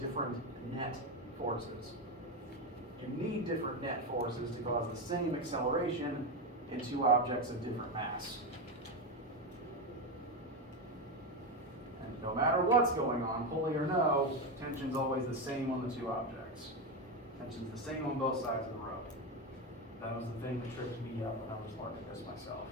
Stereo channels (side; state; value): both; normal; correlation 0.13